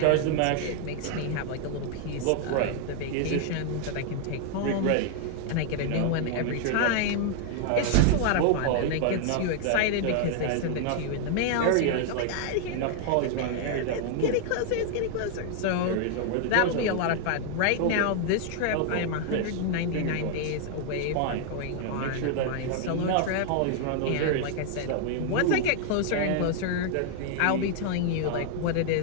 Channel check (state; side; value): different; both; correlation 0.00